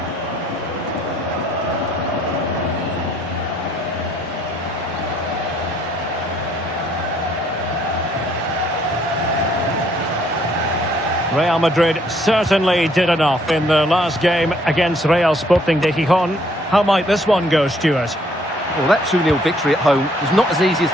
Real Madrid certainly did enough in the last game against Real Sporting de Gijón. How might this one go, Stuart? Well, that 2-0 victory at home was not as easy as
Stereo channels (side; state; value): both; normal; correlation 0.65